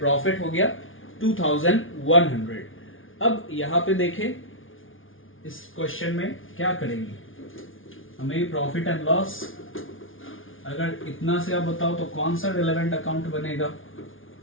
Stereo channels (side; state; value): right; late; 0.58 ms